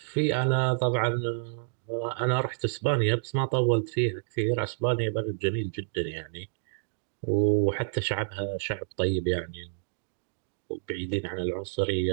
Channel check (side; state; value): left; silent; digital silence